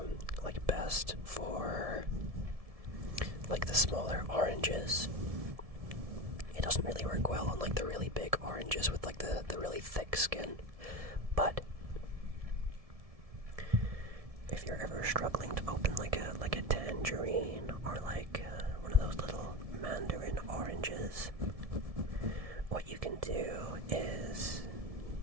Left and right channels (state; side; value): late; left; 1.7 ms